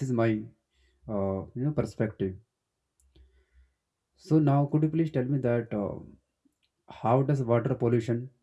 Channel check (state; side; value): identical; both; correlation 1.00